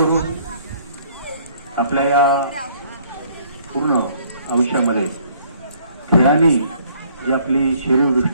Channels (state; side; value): inverted; both; correlation -0.61